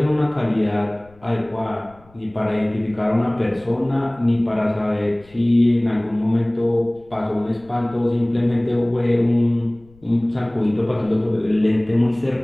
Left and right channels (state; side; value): noise; left; rumble, 28 dB below the sound